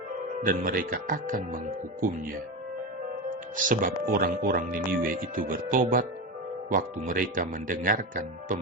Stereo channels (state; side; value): normal; both; correlation 0.19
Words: dan mereka akan menghukumnya. Sebab orang-orang Niniwe itu bertobat waktu mereka mendengarkan